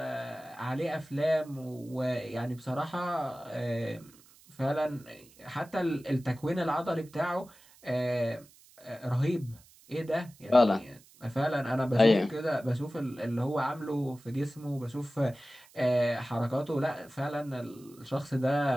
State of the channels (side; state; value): right; noise; hiss, 26 dB below the sound